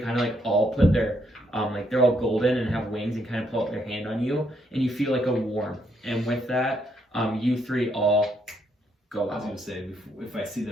of like all put their, like they're all golden and have wings and kind of pull out their hand on you, and you feel like a warmth. And with that, you three all go I was out. gonna say if I see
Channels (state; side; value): normal; both; correlation 0.74